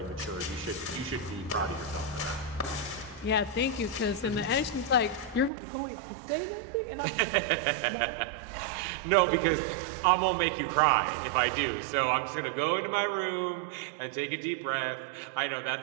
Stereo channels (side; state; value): left; drops out; at 5.5 s